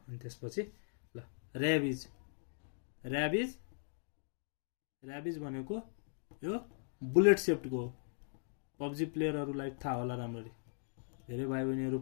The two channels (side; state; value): right; silent; digital silence